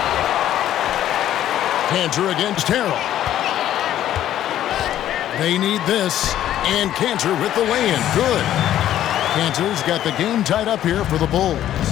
Cantor against Harrell. They need this. And Cantor with the lay-in. Good. Cantor's got the game tied up here for the Bulls.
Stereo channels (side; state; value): right; quieter; 12.0 dB